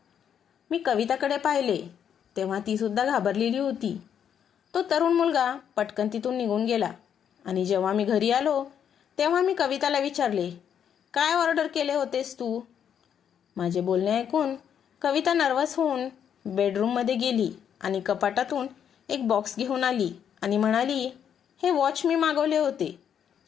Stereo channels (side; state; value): right; quieter; 8.6 dB